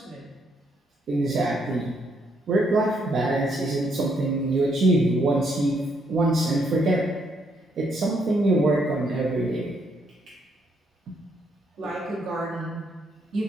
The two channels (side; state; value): both; normal; correlation 0.73